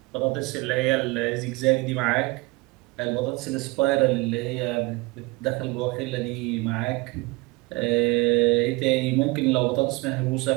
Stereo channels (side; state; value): left; quieter; 24.0 dB